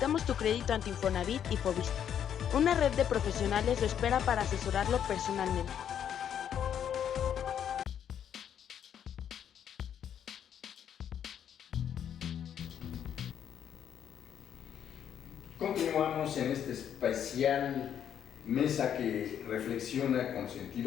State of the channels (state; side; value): quieter; right; 9.2 dB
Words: tu crédito ante Infonavit y Fovista. Una red de profesionales lo espera para asesorarlo personalmente. Continuamos en este especial mesa que reflexiona con